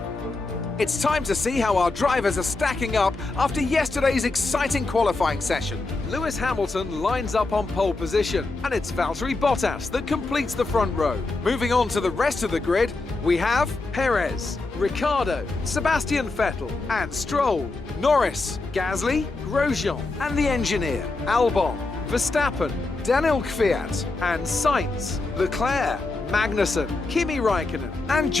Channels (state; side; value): quieter; right; 3.4 dB